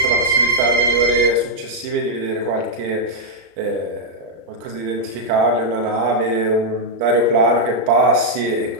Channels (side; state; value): left; late; 35 ms